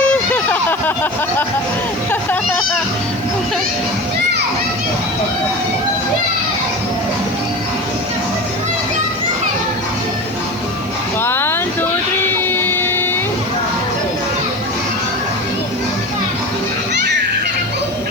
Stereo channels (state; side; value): noise; left; hiss, 26 dB below the sound